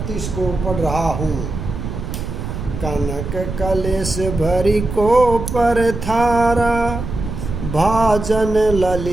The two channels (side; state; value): right; noise; rumble, 6 dB below the sound